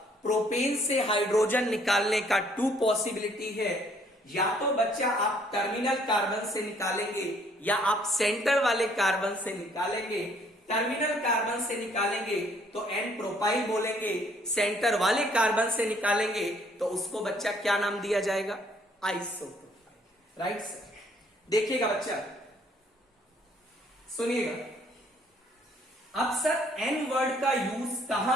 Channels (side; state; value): both; normal; correlation 0.63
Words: प्रोपेन से हाइड्रोजन निकालने का 2 पॉसिबिलिटी है। या तो बच्चा आप टर्मिनल कार्बन से निकालेंगे या आप सेंटर वाले कार्बन से निकालेंगे। टर्मिनल कार्बन से निकालेंगे तो एन प्रोपाइल बोलेंगे, सेंटर वाले कार्बन से निकालेंगे तो उसको बच्चा क्या नाम दिया जाएगा? Isopropyl, right sir. देखिएगा बच्चा, सुनिएगा। अब सर एन वर्ड का यूज